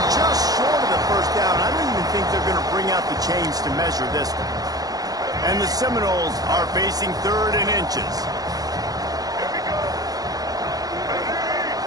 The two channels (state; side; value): late; left; 0.18 ms